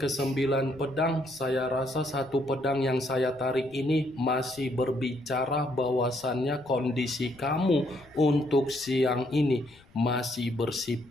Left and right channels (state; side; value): noise; left; rumble, 28 dB below the sound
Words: pedang, saya rasa satu pedang yang saya tarik ini masih berbicara bahwasannya kondisi kamu untuk siang ini masih